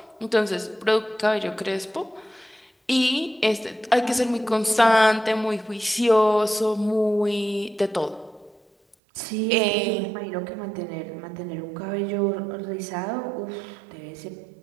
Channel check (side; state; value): left; drops out; at 9.0 s